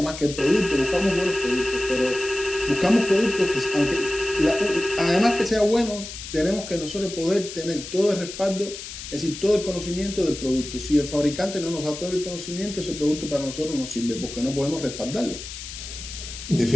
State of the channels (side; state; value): left; noise; hiss, 10 dB below the sound